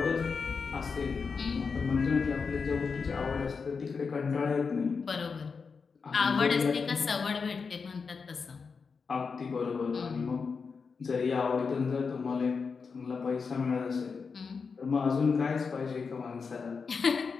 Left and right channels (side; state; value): right; quieter; 5.2 dB